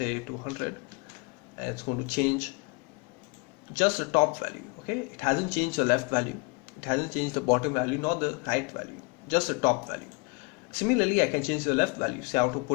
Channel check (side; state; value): right; quieter; 29.7 dB